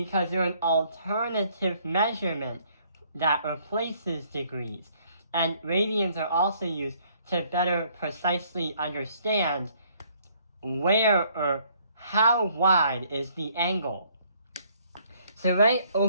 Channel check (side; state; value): both; inverted; correlation -0.64